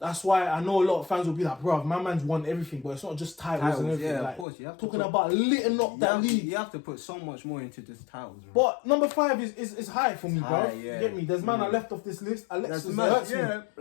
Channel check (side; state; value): right; drops out; at 4.5 s